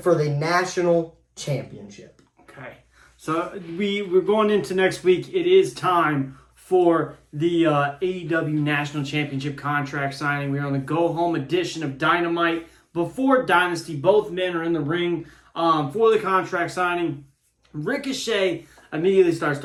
the National Championship. Okay. So we're going into next week. It is time for the AEW National Championship contract signing. We're on the go-home edition of Dynamite. Before Dynasty, both men are in the ring for the contract signing. Ricochet immediately starts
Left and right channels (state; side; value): identical; both; correlation 1.00